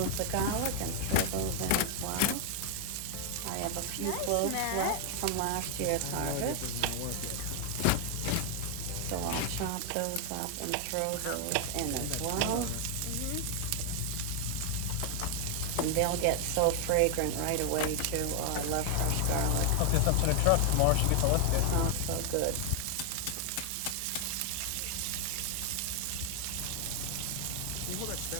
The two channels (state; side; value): different; both; correlation 0.00